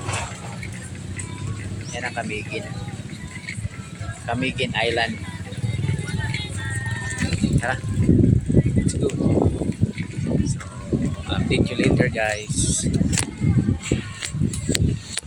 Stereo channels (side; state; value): both; identical; correlation 1.00